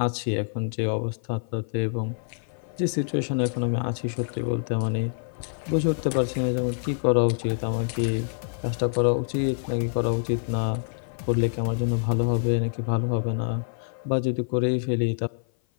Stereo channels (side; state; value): right; silent; 56 dB below the other